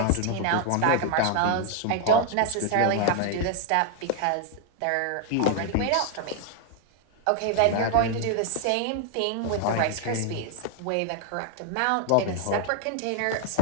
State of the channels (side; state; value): both; different; correlation 0.00